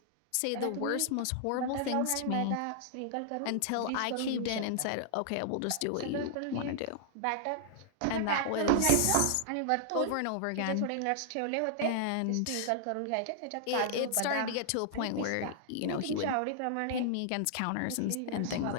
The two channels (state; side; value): different; both; correlation -0.01